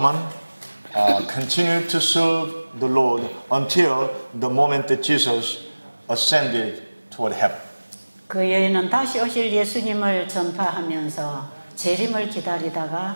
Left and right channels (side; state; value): both; inverted; correlation -1.00